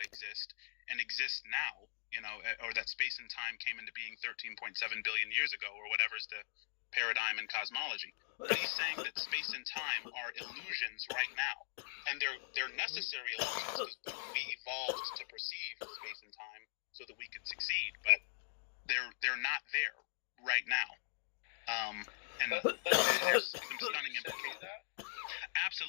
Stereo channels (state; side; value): silent; right; digital silence